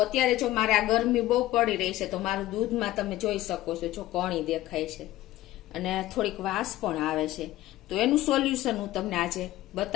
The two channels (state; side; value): quieter; right; 15.6 dB